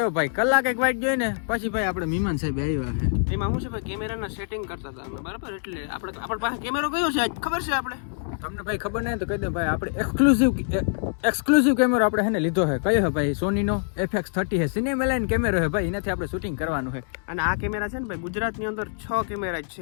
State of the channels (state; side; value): silent; right; digital silence